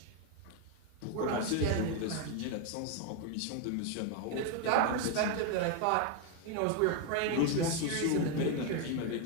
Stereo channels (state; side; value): different; both; correlation 0.01